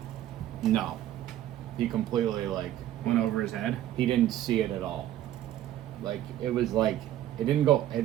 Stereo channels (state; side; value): quieter; left; 12.7 dB